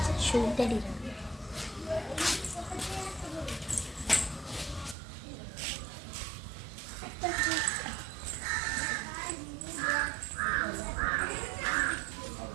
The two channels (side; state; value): left; drops out; at 5.0 s